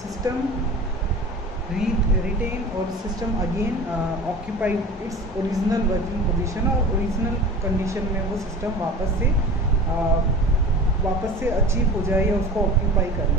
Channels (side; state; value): both; normal; correlation 0.38